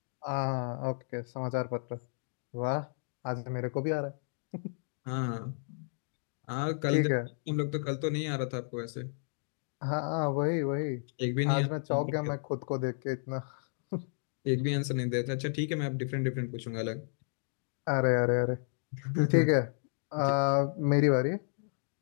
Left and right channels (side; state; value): right; silent; digital silence